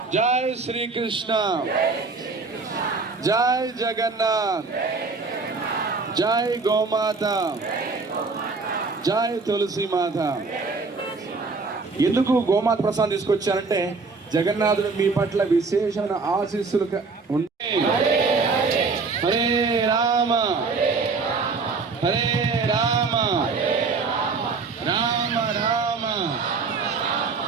జై శ్రీకృష్ణ జై జగన్నాథ్ జై గోమాత జై తులసి మాత. ఎందుకు గోమాత ప్రసాదం తీసుకొచ్చారంటే జగన్నాథుడు మీ పట్ల విశేషమైన ఆశీస్సులు ఉంటాయి. హరే రామ హరే రామ రామ రామ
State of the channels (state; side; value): quieter; left; 4.3 dB